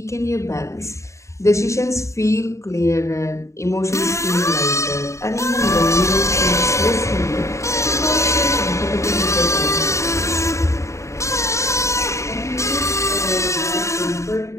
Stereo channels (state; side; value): late; right; 0.14 ms